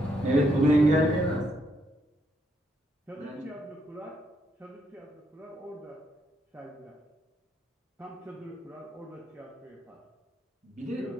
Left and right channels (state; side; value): normal; both; correlation 0.76